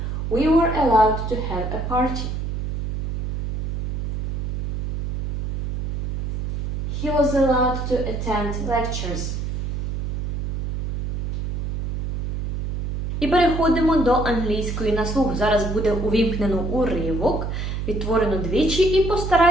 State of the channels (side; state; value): right; noise; hum, 2 dB below the sound